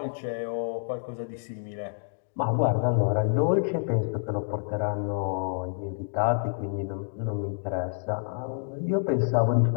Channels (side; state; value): right; silent; digital silence